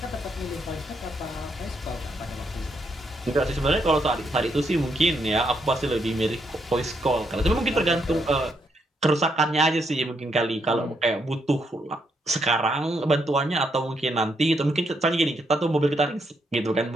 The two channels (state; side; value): normal; both; correlation 0.77